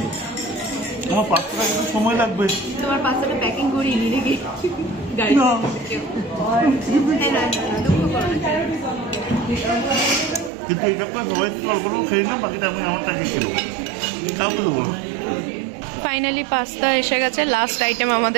আমার পাঁচটা কিন্তু সময় লাগবে। তোমার পাঁচটা প্যাকিং করিয়ে নি নাকি গাড়ি? কিন্তু এটা সবাই অল্প খেয়ে না, বাকিটা আমি আমারটা খেয়েছিল, কাউকে দেবো। ফাইনালি পাস্তা এসে গেছে, লাস্ট আইটেম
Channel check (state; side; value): drops out; left; at 10.5 s